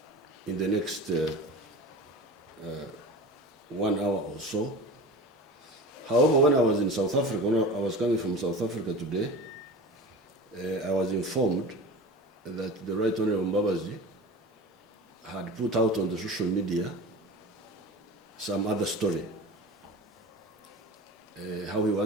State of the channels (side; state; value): both; normal; correlation 0.34